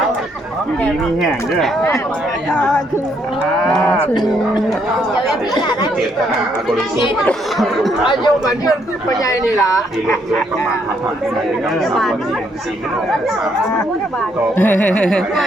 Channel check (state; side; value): normal; both; correlation 0.72